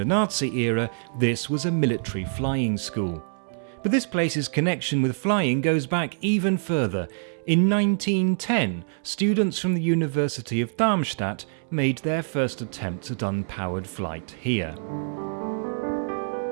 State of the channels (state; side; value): silent; left; 60 dB below the other